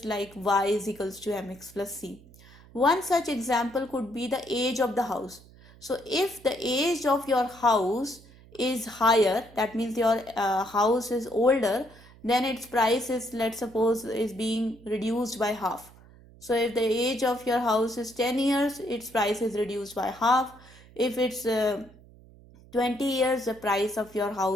like y is equals to mx plus c. One such example could be the age of the house. So if the age of your house is higher, that means your house is older, then its price is, let's suppose, is being reduced by half. So if the age of your house is 10 years, its price is reduced by half. If it's 20 years, the price of your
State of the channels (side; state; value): right; noise; hum, 23 dB below the sound